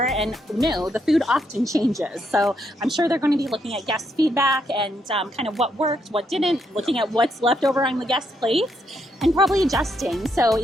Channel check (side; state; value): both; normal; correlation 0.77